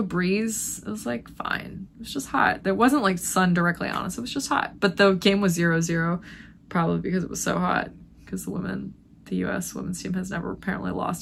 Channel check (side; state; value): both; identical; correlation 1.00